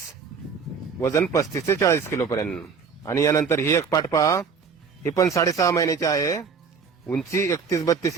वजन 35 ते 40 किलो पर्यंत. आणि यानंतर ही एक पाट पहा. ही पण 6.5 महिन्याची आहे, उंची 31-32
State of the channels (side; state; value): left; quieter; 5.8 dB